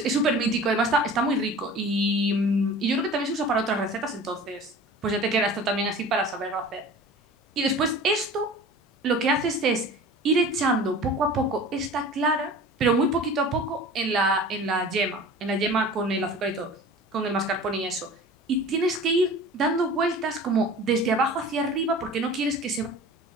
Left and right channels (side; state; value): both; normal; correlation 0.40